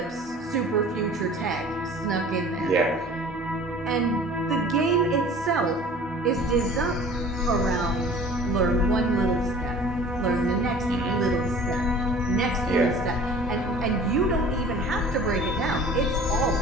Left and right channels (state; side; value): normal; both; correlation 0.45